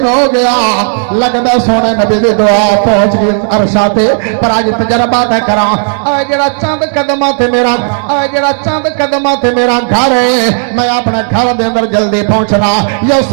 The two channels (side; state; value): left; silent; digital silence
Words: ہو گیا لگدا سونے نبی دی دعا پہنچ گئی عرشاں تے پر اج تجربہ تے کراں اے جڑا چند قدماں تے میرا اے جڑا چند قدماں تے میرا گھر ہے میں اپنے گھر دے اندر جلدی پہنچنا یا